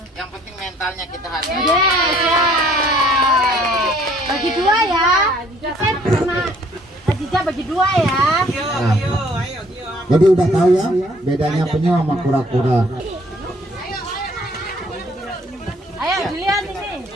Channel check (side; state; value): both; normal; correlation 0.60